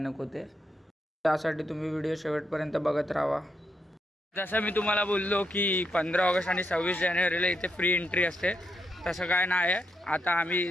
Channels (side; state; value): both; normal; correlation 0.81